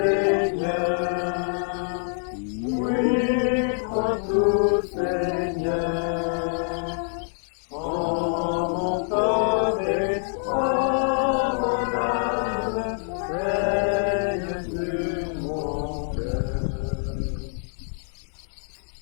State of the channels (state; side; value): silent; right; digital silence